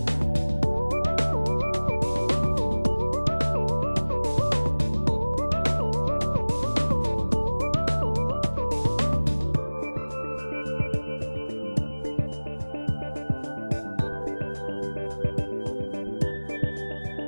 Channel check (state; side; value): inverted; both; correlation -1.00